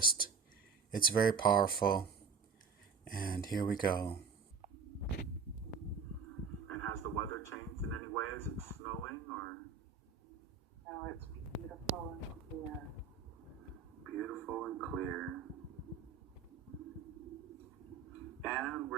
It's very powerful. And here we go. And has the weather changed in any way? Is it snowing or? No, it's beautiful and clear. Beautiful and clear. And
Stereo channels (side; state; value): left; quieter; 5.6 dB